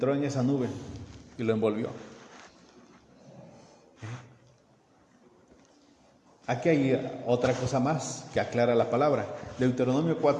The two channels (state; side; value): identical; both; correlation 1.00